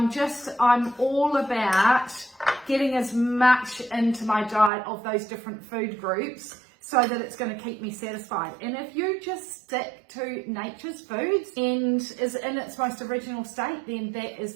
all about getting as much into my diet of those different food groups so that it's going to keep me satisfied. And if you just stick to nature's foods and is in its most original state, then that is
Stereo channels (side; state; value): left; drops out; at 4.7 s